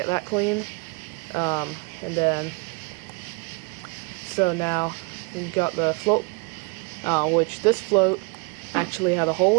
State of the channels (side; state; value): left; quieter; 30.9 dB